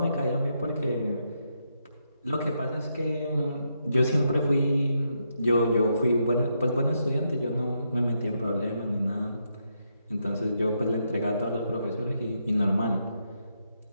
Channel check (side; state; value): both; inverted; correlation -0.80